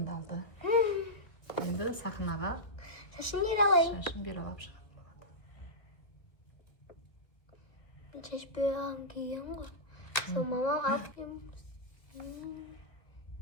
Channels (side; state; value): right; late; 1.7 ms